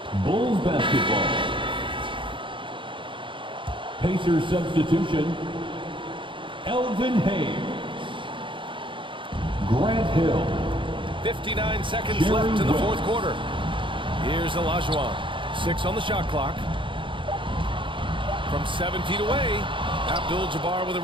Bulls basketball. Pacers substitution. Elvin Hayes. Grant Hill. 59 seconds left in the fourth quarter. Here's Olajuwon. 6 on the shot clock. From 7 feet away, Abdul-Jabbar with a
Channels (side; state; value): left; late; 0.24 ms